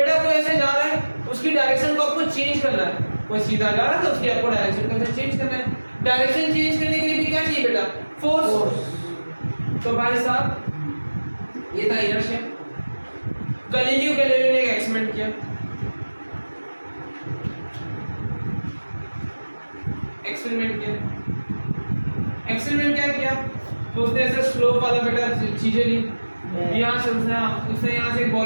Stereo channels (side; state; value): both; inverted; correlation -1.00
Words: कोई ऐसे जा रहा है उसकी डायरेक्शन को आपको चेंज करना है, कोई सीधा जा रहा है तो उसकी आपको डायरेक्शन को चेंज करना है। डायरेक्शन चेंज करने के लिए भी क्या चाहिए बेटा, फोर्स। तो भाई साहब ये था इनर्शिया। गैलीलियो गैलीलियो ने एक एक्सपेरिमेंट किया, एक्सपेरिमेंट क्या किया, तो उसने ऐसे स्लोप वाला बेटा चीजें ली, यहाँ से उसने यहाँ से एक